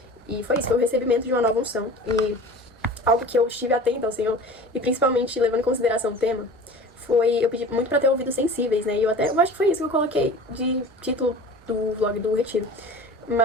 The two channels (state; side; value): normal; both; correlation 0.39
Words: E foi isso, foi o recebimento de uma nova unção. E algo que eu estive atenta ao Senhor, e principalmente levando em consideração o tema, foi, eu pedi muito pra ter ouvidos sensíveis, né? E eu acho que foi isso que eu coloquei de título do vlog do retiro.